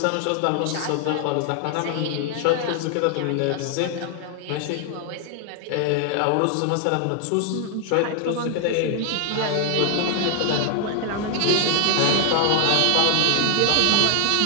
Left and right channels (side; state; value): both; different; correlation 0.00